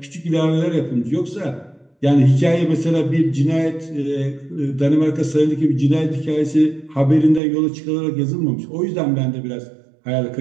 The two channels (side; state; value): left; drops out; at 7.4 s